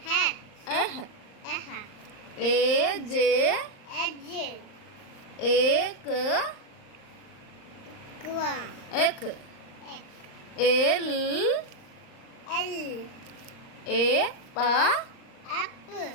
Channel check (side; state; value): right; late; 38 ms